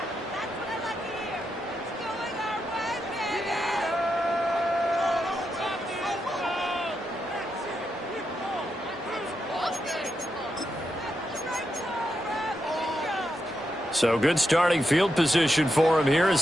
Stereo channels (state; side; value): normal; both; correlation 0.85